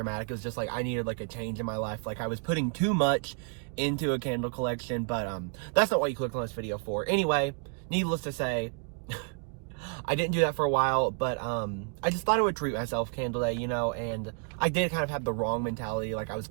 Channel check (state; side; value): quieter; left; 39.5 dB